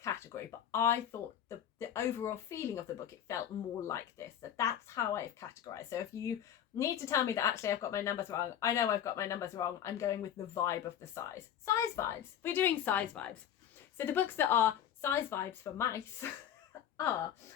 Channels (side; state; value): right; quieter; 9.9 dB